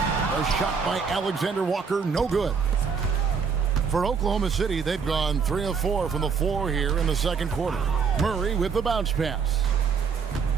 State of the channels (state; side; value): quieter; left; 5.9 dB